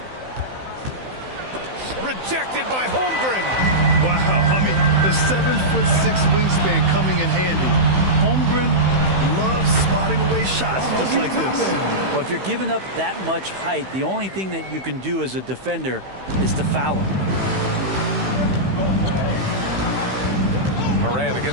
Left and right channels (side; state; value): left; late; 16 ms